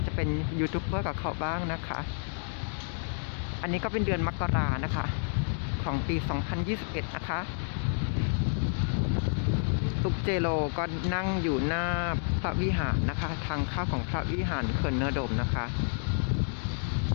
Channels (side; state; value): right; silent; digital silence